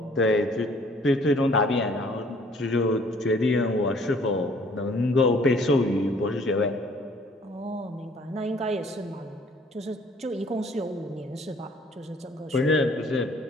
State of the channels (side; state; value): both; normal; correlation 0.57